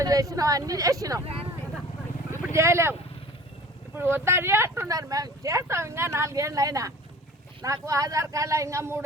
చేసినాం, అన్నీ చేసినాం. ఇప్పుడు చేయలేము. ఇప్పుడు వద్దని అంటున్నారు. మేము చేస్తాం. ఇంకా 4 ఏళ్ళు అయినా నాకు ఆధార్ కార్డులో ఇంకా 3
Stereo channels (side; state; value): both; normal; correlation 0.44